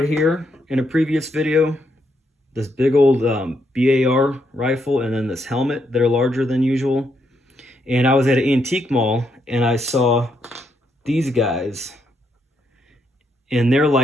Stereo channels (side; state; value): both; normal; correlation 0.77